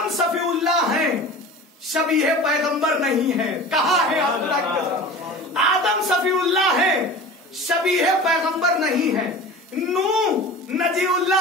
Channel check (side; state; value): both; normal; correlation 0.36